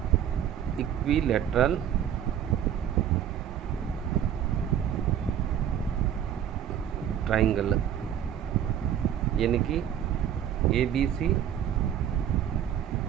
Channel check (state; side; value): quieter; left; 9.8 dB